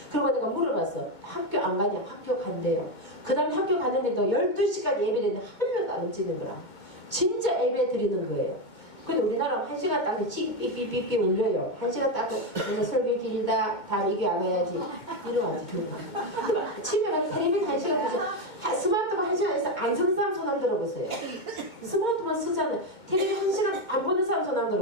그리고 내가 물어봤어. 학교 안 가냐? 학교 간대요. 그 다음에 학교 가는데도 12시간 예배했는데 한 명도 안 움직이는 거라. 진짜 예배 드리는 거예요. 근데 우리나라 1시간 딱 삐삐삐삐삐 울려요. 1시간 딱 그래서 설교 길다. 다음 이게 안 와야지. 이러면 집에 가서 텔레비전 1시간 보세요. 스마트폰 1시간에서 안 쓰는 사람 손 안 들어보세요. 스마트폰 쓰잖아요. 텔레비전 1시간 안 보는 사람 손 안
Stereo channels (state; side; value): late; right; 2.2 ms